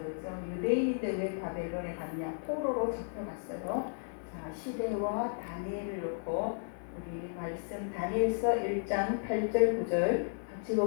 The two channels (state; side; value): silent; right; 55 dB below the other